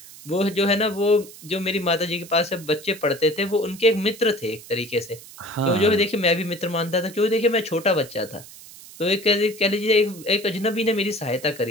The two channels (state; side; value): noise; right; hiss, 18 dB below the sound